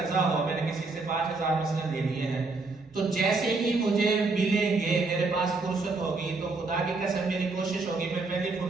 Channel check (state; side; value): quieter; left; 3.7 dB